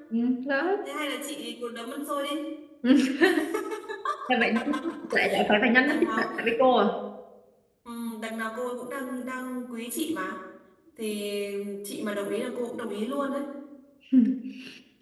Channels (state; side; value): identical; both; correlation 1.00